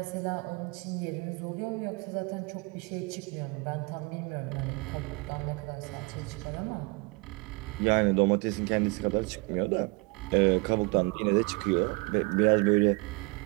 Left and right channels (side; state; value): left; quieter; 28.2 dB